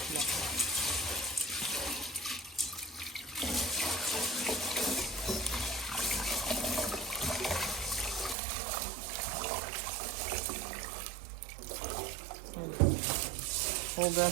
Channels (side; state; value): left; drops out; at 8.3 s